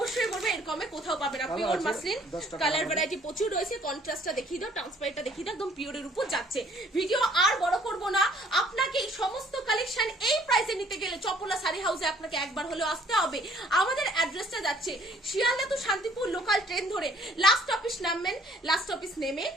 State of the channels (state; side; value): normal; both; correlation 0.60